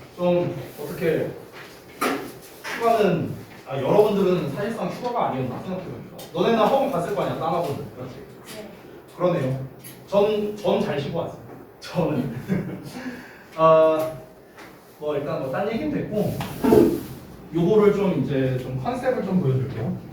좀 어떻게 휴가는 여러분들은 사실상 휴가가 아니었나 생각해보니까 너네는 학원 갔을 거 아니야, 딴 학원은. 그렇지? 그러네요. 전 잘 쉬고 왔어요. 저는 뭐 일단 뭐 딴 얘기는 됐고 요거를 좀 이제 좀 컨셉을 좀 보여드릴게요.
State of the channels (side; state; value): both; identical; correlation 1.00